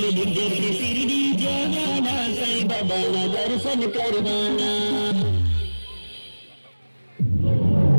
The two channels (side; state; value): both; inverted; correlation -1.00